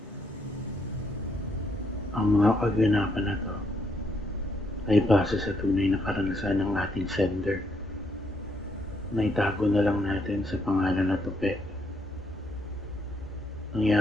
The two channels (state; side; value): normal; both; correlation 0.74